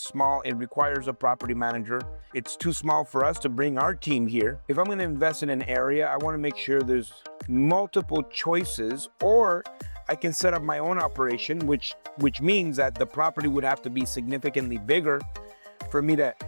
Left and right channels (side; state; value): both; inverted; correlation -1.00